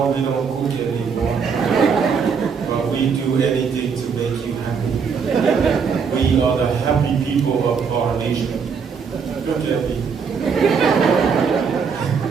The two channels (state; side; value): quieter; left; 6.0 dB